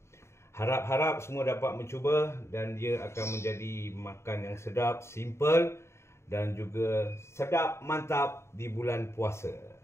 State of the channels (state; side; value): late; right; 0.13 ms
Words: Harap-harap semua dapat mencuba dan dia akan menjadi makan yang sedap, simple dan juga sedap mantap di bulan puasa.